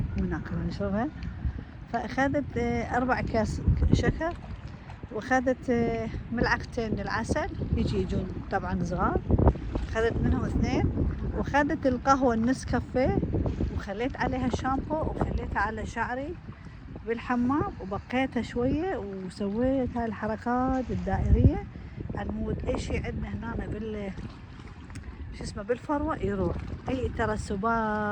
مو ناكلها نشربها. فأخذت 4 أكياس شكر واخذت ملعقتين من العسل يجون طبعا صغار. اخذت منهم 2 واخذت القهوة النسكافيه وخليت عليها شامبو وخليتها على شعري بالحمام وبقيتها شوية وسويت هاي الحركات الدائرية عن اي شيء عندنا هنا شو اسمه بالفروة يروح. اي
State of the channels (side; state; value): both; identical; correlation 1.00